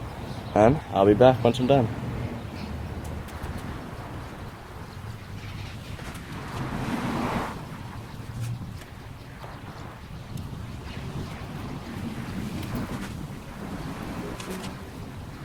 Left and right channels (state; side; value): identical; both; correlation 1.00